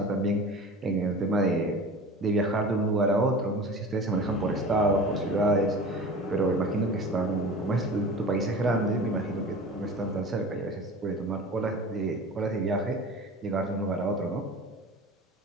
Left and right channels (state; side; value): normal; both; correlation 0.37